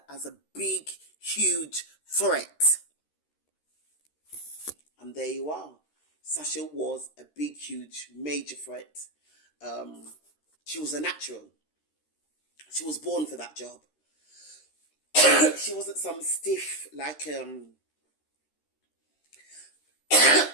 as a big, huge threat. And there you are. Sasha was a big, huge, major threat She was a natural. She was born for that job. She wasn't some stiff like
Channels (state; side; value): late; right; 13 ms